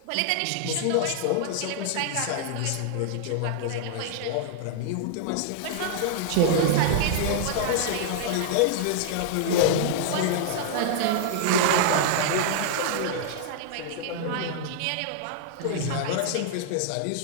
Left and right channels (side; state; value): both; different; correlation -0.01